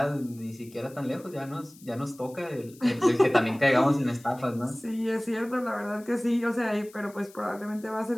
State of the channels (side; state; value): left; noise; hiss, 24 dB below the sound